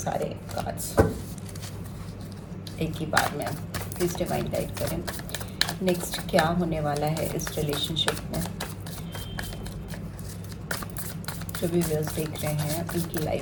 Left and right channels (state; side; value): identical; both; correlation 1.00